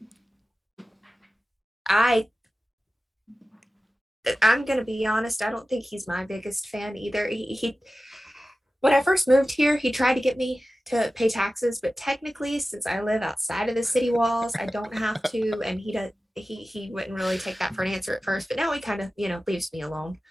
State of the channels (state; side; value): normal; both; correlation 0.95